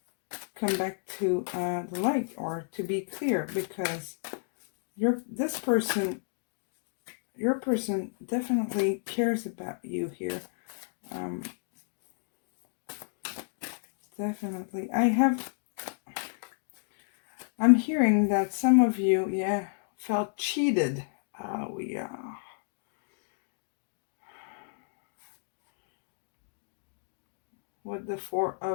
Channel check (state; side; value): silent; right; digital silence